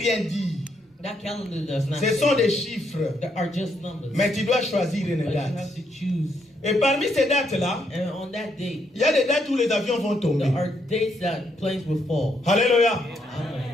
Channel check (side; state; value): both; normal; correlation 0.76